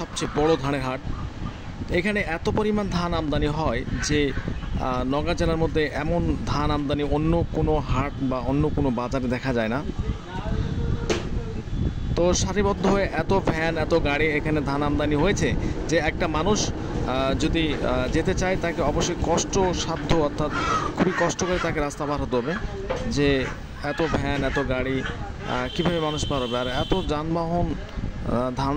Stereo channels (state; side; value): identical; both; correlation 1.00